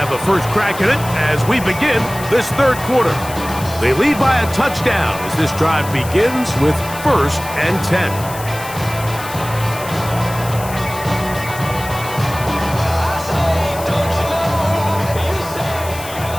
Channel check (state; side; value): noise; left; hiss, 13 dB below the sound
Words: a first crack at it as we begin this third quarter. They lead by a touchdown as this drive begins with 1st and 10.